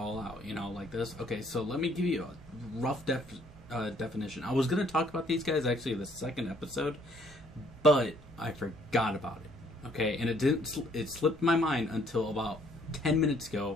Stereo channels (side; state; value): both; normal; correlation 0.63